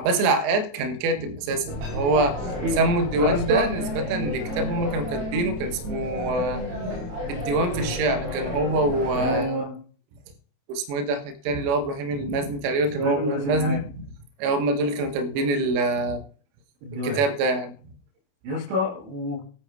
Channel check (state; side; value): late; left; 28 ms